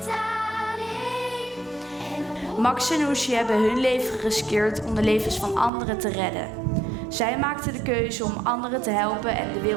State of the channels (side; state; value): left; drops out; at 5.7 s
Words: alleen. Max en Oesje hebben hun leven geriskeerd om de levens van anderen te redden. Zij maakten de keuze om anderen te helpen en de